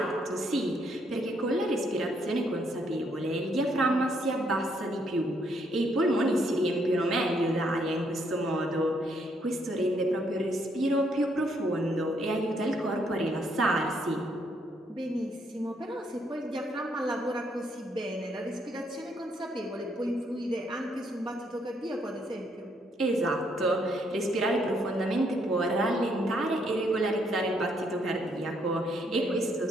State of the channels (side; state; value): both; normal; correlation 0.72